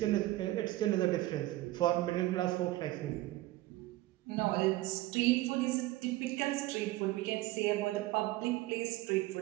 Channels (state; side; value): quieter; left; 17.5 dB